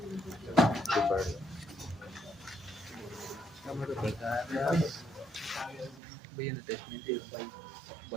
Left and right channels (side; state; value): left; drops out; at 6.0 s